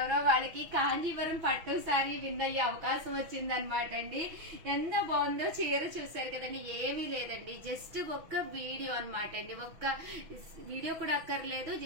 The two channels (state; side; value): late; left; 6.2 ms